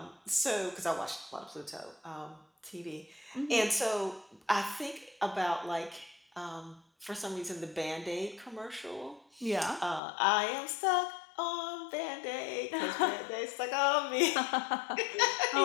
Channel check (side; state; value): right; drops out; at 10.0 s